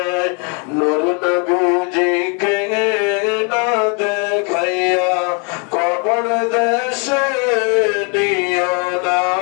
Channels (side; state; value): right; quieter; 36.1 dB